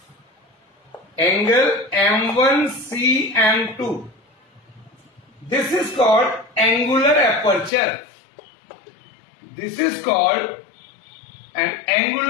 angle M1, C and 2. This is called angular aperture. This is called an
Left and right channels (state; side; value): drops out; right; at 7.7 s